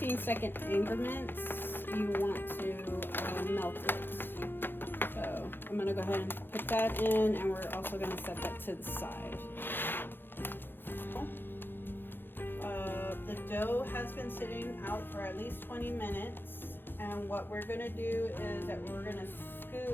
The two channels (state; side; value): late; right; 0.10 ms